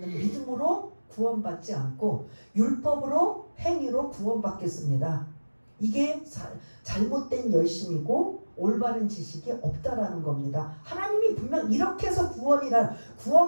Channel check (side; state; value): both; inverted; correlation -1.00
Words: 믿음으로 구원받지 않고 율법으로 행위로 구원받겠습니다. 이게 잘못된 열심이고 올바른 지식이 없다라는 겁니다. 하나님이 분명 이렇게 해서